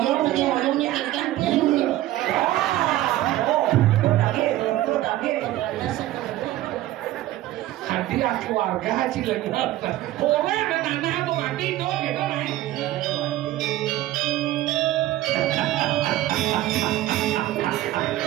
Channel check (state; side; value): quieter; left; 15.1 dB